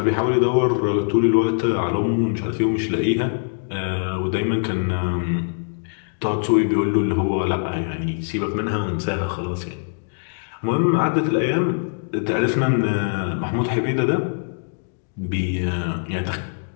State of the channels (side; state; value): right; silent; digital silence